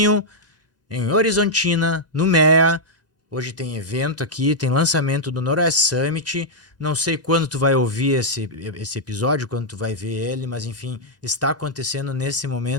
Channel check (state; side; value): late; right; 2.0 ms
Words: em Horizontina, no MEA. Hoje tem evento aqui, tem lançamento do Noroeste Summit. Não sei quando tu vai ouvir esse episódio, quando tu vai ver ele, mas enfim, está acontecendo nesse